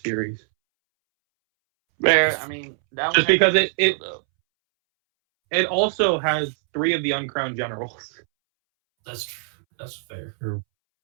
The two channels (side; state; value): left; silent; 64 dB below the other